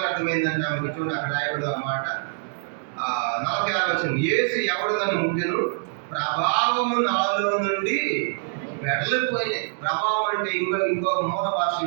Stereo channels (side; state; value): left; silent; digital silence